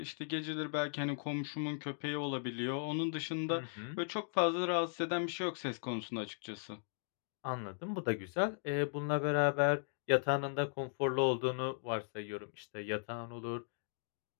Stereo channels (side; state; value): right; silent; digital silence